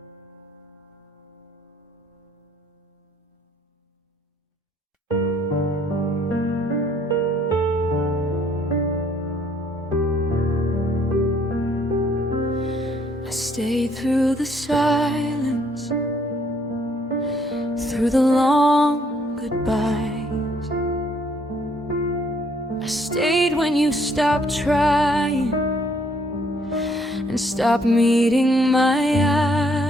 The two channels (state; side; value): normal; both; correlation 0.66